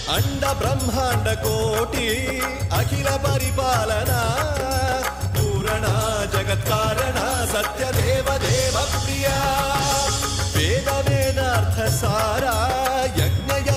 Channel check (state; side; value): identical; both; correlation 1.00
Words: अंड ब्रह्मांड कोटि अखिल परिपालना पूरणा जगत्कारणा सत्यदेव देव प्रिया वेद वेदार्थ सारा यज्ञ